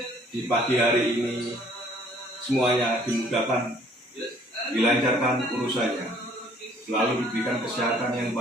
di pagi hari ini semuanya dimudahkan, dilancarkan urusannya, selalu diberikan kesehatan yang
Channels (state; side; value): normal; both; correlation 0.59